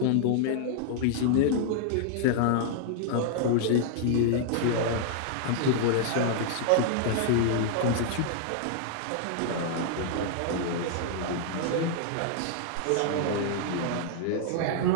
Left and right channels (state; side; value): different; both; correlation -0.01